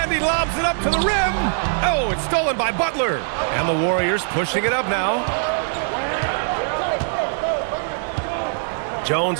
he lobs it up to the rim. Oh, it's stolen by Butler. And the Warriors pushing it up now. Jones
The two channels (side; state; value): left; silent; digital silence